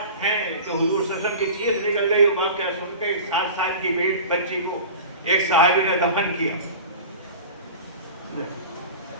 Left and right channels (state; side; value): inverted; both; correlation -0.35